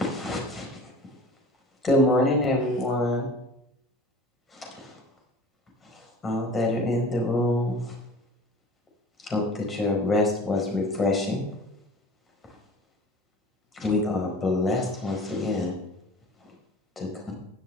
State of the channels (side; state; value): both; normal; correlation 0.41